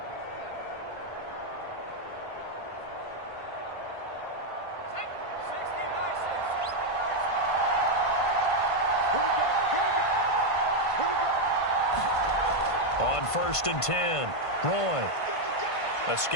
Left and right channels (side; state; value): right; late; 1.5 ms